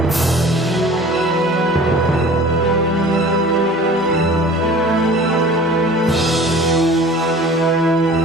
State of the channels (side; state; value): both; normal; correlation 0.44